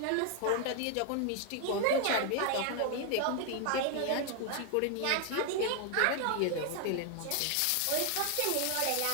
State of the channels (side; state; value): both; different; correlation 0.00